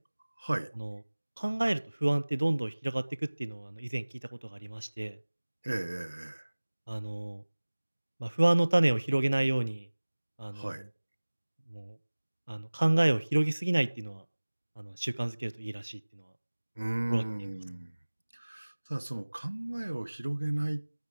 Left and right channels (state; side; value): inverted; both; correlation -1.00